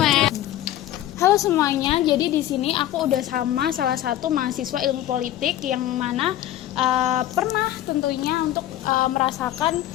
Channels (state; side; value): quieter; right; 13.2 dB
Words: Halo semuanya, jadi di sini aku udah sama salah satu mahasiswa ilmu politik yang mana pernah tentunya untuk merasakan